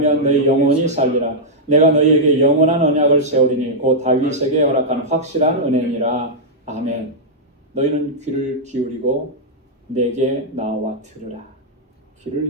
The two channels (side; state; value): both; normal; correlation -0.08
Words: 너희 영혼이 살리라. 내가 너희에게 영원한 언약을 세우리니 곧 다윗에게 허락한 확실한 은혜니라. 아멘. 너희는 귀를 기울이고 내게 나와 들으라.